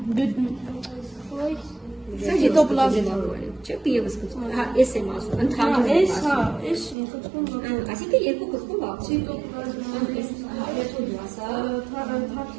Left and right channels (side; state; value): left; drops out; at 7.0 s